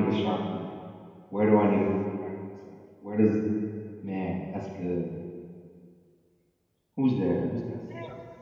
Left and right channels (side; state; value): both; identical; correlation 1.00